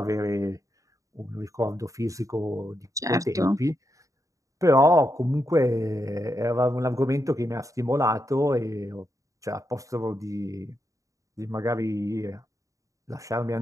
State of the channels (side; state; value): left; late; 0.16 ms